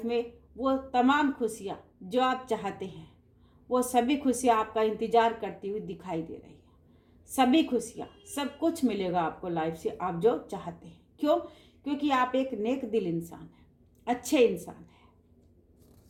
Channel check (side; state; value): both; identical; correlation 1.00